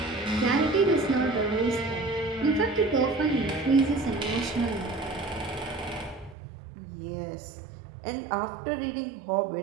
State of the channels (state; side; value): drops out; left; at 6.4 s